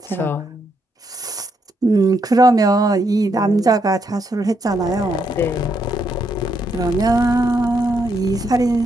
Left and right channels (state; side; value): normal; both; correlation 0.77